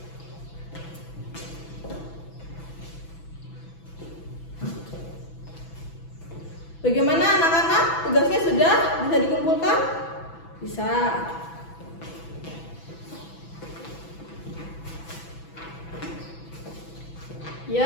Bagaimana anak-anak? Tugasnya sudah bisa dikumpulkan? Bisa.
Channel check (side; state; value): right; late; 6.0 ms